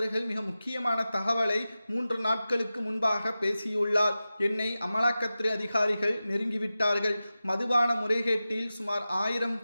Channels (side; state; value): both; inverted; correlation -0.94